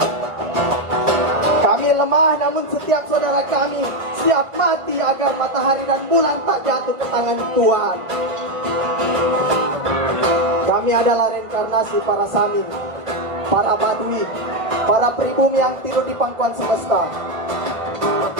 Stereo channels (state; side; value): late; left; 1.5 ms